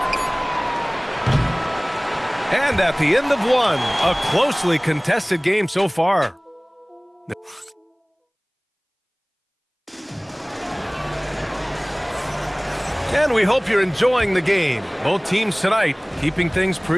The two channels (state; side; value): identical; both; correlation 1.00